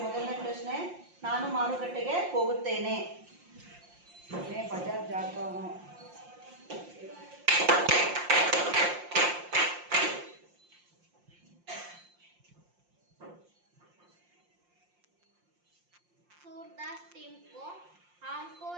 ಮೊದಲನೇ ಪ್ರಶ್ನೆ, ನಾನು ಮಾರುಕಟ್ಟೆಗೆ ಹೋಗುತ್ತೇನೆ। मैं बाजार जाता हूँ। सूरदास टीम को हमको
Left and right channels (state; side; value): late; left; 5.7 ms